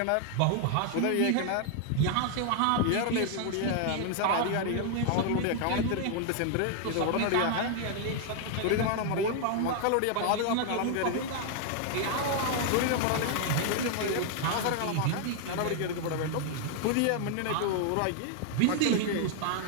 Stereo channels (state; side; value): different; both; correlation 0.00